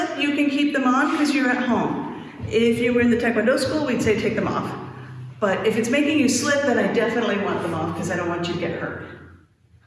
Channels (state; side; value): identical; both; correlation 1.00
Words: you can keep them on because you're at home. If you were in the Taekwondo school, we'd say take them off. But if it's making you slip, then I definitely want them off because I don't want you to get hurt.